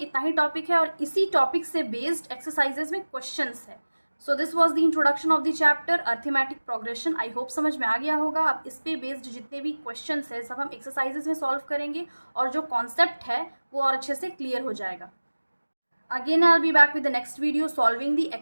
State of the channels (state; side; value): inverted; both; correlation -1.00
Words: ही टॉपिक है, और इसी टॉपिक से बेस्ड एक्सरसाइजेज में क्वेश्चंस है। So this was the introduction of the chapter arithmetic progression. I hope समझ में आ गया होगा। अब इस पे बेस्ड जितने भी क्वेश्चंस है सब हम एक्सरसाइजेज में सॉल्व करेंगे, और जो कॉन्सेप्ट है वो और अच्छे से क्लियर हो जाएगा। Again, I'll be back with the next video solving the